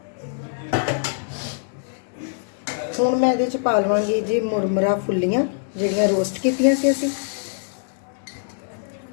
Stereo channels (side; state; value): right; silent; 63 dB below the other